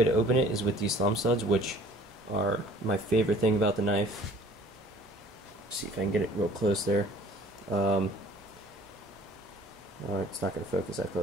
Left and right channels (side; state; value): both; normal; correlation 0.51